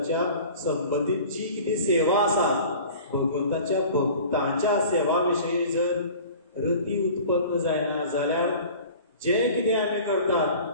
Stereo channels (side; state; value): both; inverted; correlation -0.43